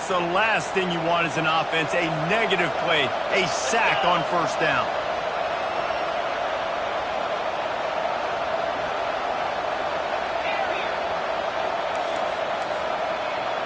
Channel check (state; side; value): identical; both; correlation 1.00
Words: the last thing you want as an offense, a negative play, a sack on first down.